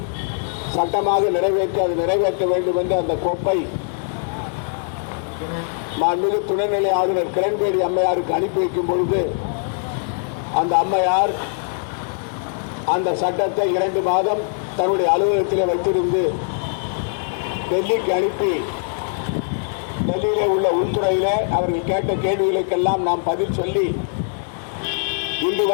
சட்டமாக நிறைவேற்ற வேண்டும் என்ற அந்த கோப்பை மாண்புமிகு துணைநிலை ஆளுநர் கிரண்பேடி அம்மையாருக்கு அனுப்பி வைக்கும் பொழுது அந்த அம்மையார் அந்த சட்டத்தை 2 மாதம் தன்னுடைய அலுவலகத்திலே வைத்திருந்து டெல்லிக்கு அனுப்பி, டெல்லியிலே உள்ள உள்துறையிலே அவர்கள் கேட்ட கேள்விகளுக்கெல்லாம் நாம் பதில் சொல்லி இன்று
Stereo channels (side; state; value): right; silent; digital silence